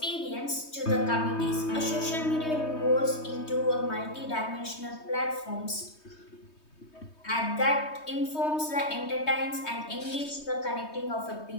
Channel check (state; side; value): late; right; 3.2 ms